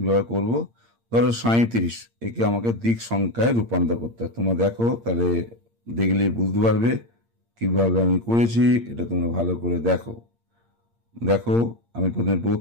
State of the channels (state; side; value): late; left; 8.7 ms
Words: করব। ধরো 37, একে আমাকে দিক সংখ্যায় রূপান্তর করতে হয়। তোমরা দেখো, তাহলে দেখলে বুঝতে পারবে কিভাবে আমি করেছি। এটা তোমরা ভালো করে দেখো। দেখো আমি প্রথমে